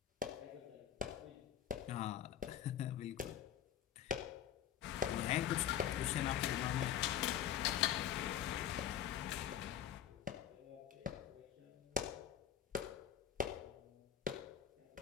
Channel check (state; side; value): quieter; right; 10.3 dB